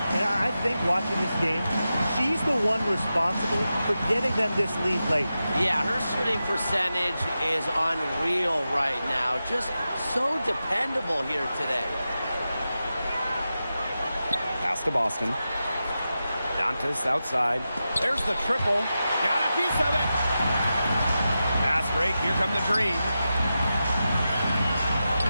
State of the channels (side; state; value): both; inverted; correlation -0.91